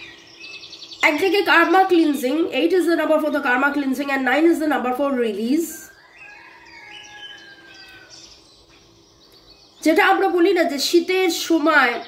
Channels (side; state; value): both; identical; correlation 1.00